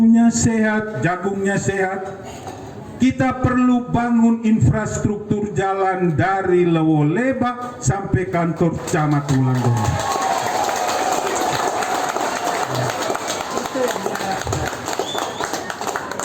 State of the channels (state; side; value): identical; both; correlation 1.00